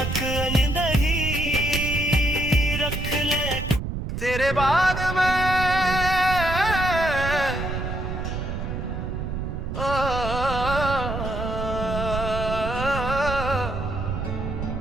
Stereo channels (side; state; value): right; noise; rumble, 4 dB below the sound